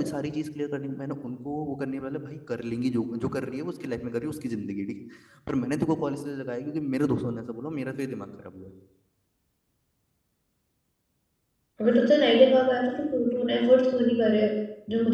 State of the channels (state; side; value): identical; both; correlation 1.00